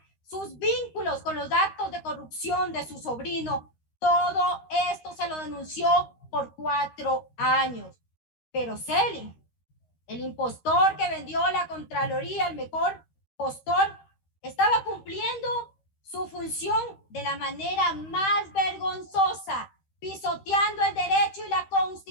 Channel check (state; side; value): late; right; 13 ms